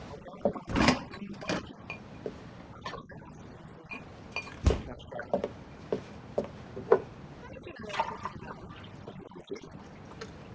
I'll cancel my Friday afternoon appointments. Wow, that was easy. Next question. How did you know there was going to be another? Because there always is.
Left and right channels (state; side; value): identical; both; correlation 1.00